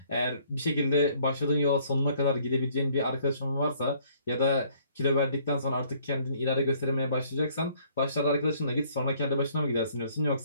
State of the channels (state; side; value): inverted; both; correlation -0.62